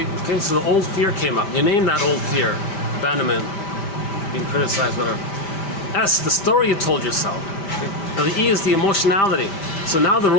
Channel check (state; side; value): late; right; 5.1 ms